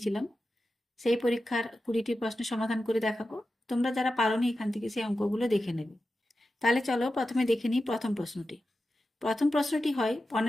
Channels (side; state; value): both; normal; correlation 0.92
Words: সেই পরীক্ষার 20টি প্রশ্ন সমাধান করে দেখাবো। তোমরা যারা পারোনি এখান থেকে সেই অঙ্কগুলো দেখে নেবে। তাহলে চলো প্রথমে দেখে নিই প্রথম প্রশ্নটি। প্রথম প্রশ্নটি হয়